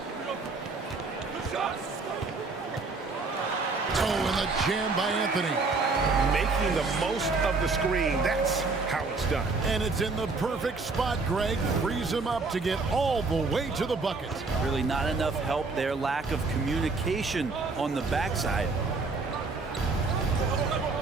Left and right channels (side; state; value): left; quieter; 4.0 dB